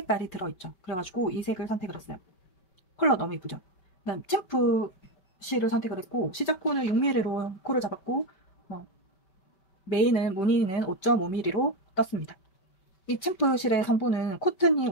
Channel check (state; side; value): late; right; 5.2 ms